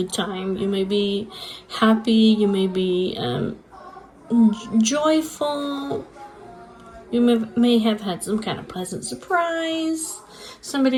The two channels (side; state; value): both; identical; correlation 1.00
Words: time. You may be happy. You may be joyful. You may have had some kind of pleasant surprise.